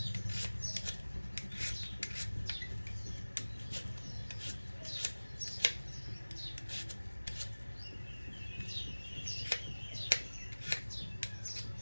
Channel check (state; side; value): inverted; both; correlation -1.00